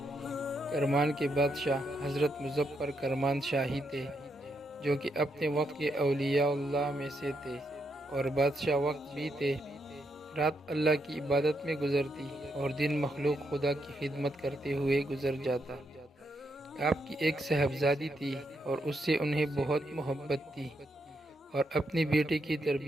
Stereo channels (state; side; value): normal; both; correlation 0.80